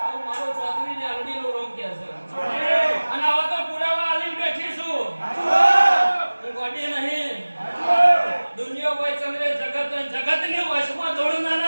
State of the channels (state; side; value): inverted; both; correlation -1.00